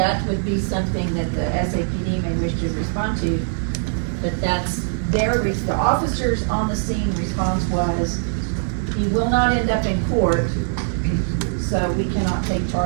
would be something that the SAPD may wish to respond to, but that's the officers on the scene response was, he will not end up in court, so we cannot take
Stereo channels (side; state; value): left; silent; digital silence